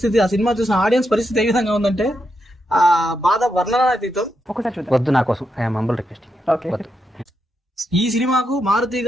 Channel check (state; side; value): normal; both; correlation 0.83